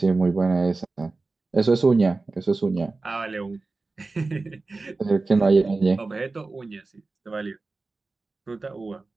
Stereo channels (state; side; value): quieter; left; 3.6 dB